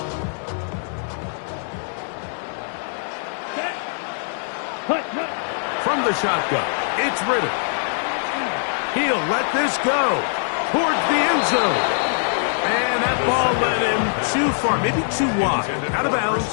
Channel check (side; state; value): right; silent; digital silence